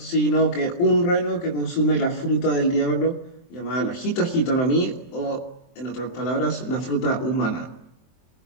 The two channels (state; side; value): late; right; 23 ms